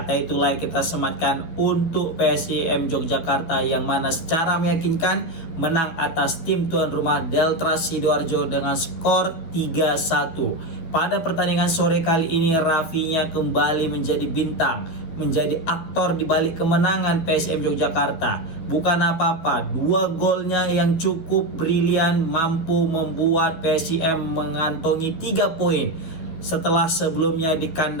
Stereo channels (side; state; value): right; late; 12 ms